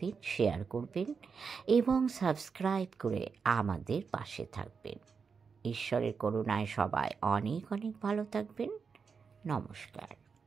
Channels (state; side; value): quieter; left; 5.6 dB